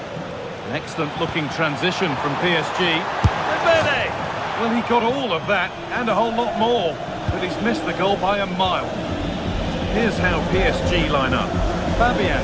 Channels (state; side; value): identical; both; correlation 1.00